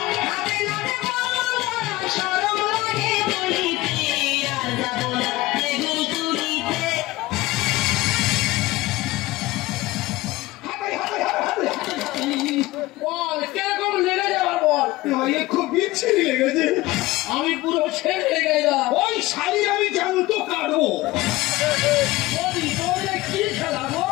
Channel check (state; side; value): quieter; right; 18.9 dB